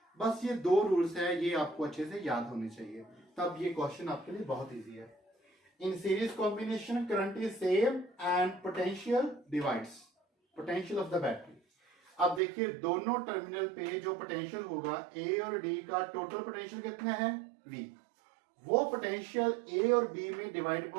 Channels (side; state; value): left; drops out; at 12.4 s